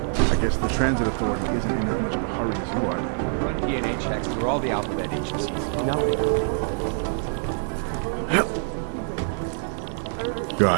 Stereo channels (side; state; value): left; silent; 62 dB below the other